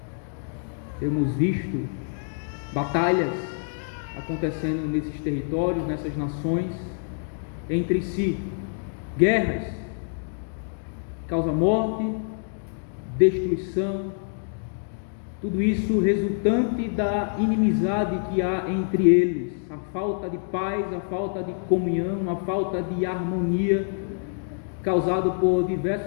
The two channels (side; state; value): right; silent; digital silence